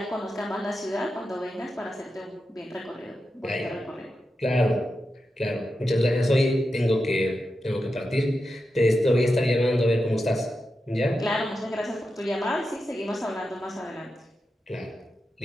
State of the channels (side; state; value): both; normal; correlation 0.89